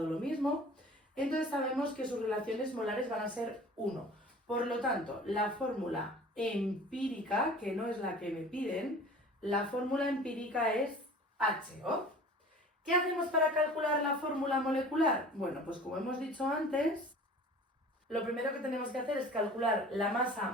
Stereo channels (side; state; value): both; normal; correlation 0.44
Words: lo mismo. Entonces sabemos que sus relaciones molares van a ser 1. Por lo tanto, la fórmula empírica, que no es la que me piden, la fórmula empírica es HO. ¿Qué hacemos para calcular la fórmula molecular? Bueno, pues como hemos dicho antes, lo primero que tenemos que hacer es calcular la masa